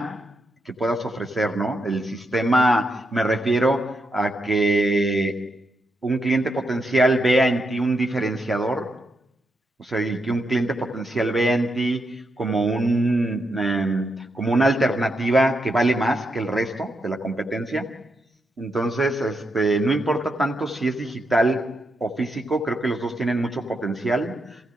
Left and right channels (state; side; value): normal; both; correlation 0.82